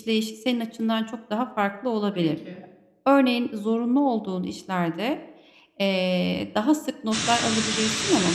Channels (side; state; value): both; identical; correlation 1.00